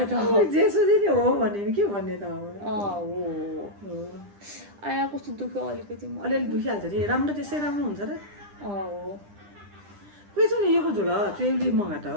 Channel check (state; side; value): late; left; 9.9 ms